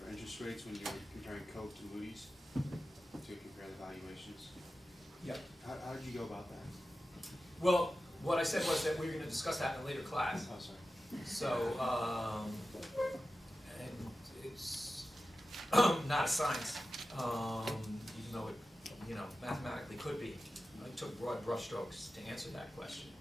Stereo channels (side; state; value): both; normal; correlation 0.93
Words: interest rates when you were comparing Coke to Moody's to compare the valuations. Yep. How did you go about that? Well, what I said was that we were going to discuss that in a later class. Oh, sorry. So, and it's not a science, even though it, you know, mathematically could be. I took broad brushstrokes to answer that question.